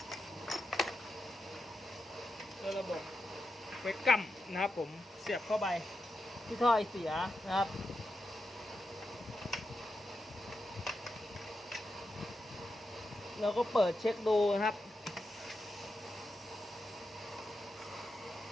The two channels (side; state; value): both; normal; correlation 0.87